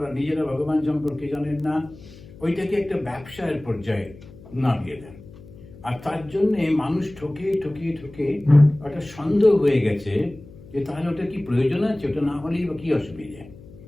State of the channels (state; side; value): noise; left; hum, 19 dB below the sound